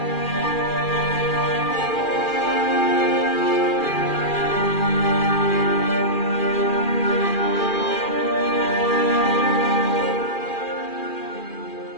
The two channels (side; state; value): right; late; 2.4 ms